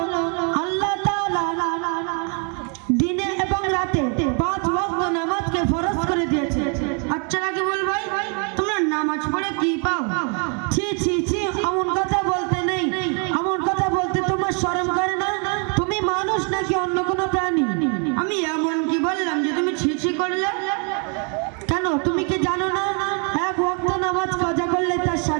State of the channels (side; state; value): left; quieter; 37.8 dB